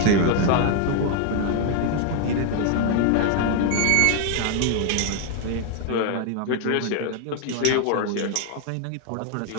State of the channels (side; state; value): both; different; correlation 0.00